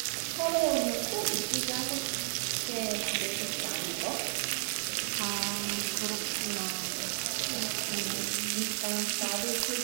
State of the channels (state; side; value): silent; left; 56 dB below the other